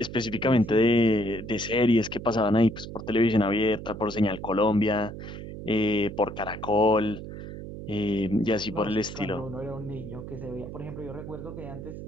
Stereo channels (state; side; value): noise; right; hum, 10 dB below the sound